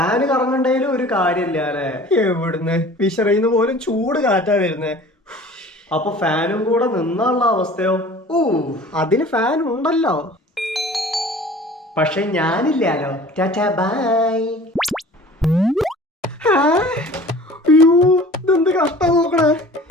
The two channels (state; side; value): normal; both; correlation 0.45